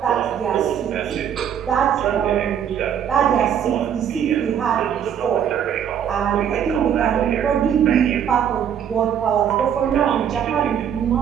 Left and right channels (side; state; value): left; quieter; 8.9 dB